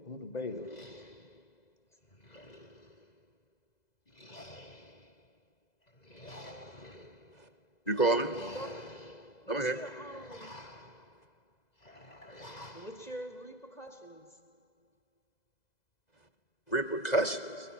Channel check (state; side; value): late; right; 2.0 ms